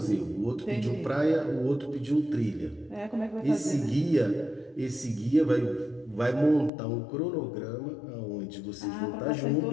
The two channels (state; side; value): drops out; right; at 6.7 s